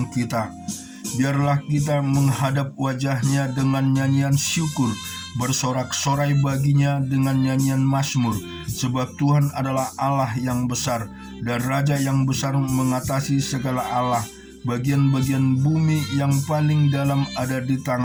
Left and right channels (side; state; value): both; identical; correlation 1.00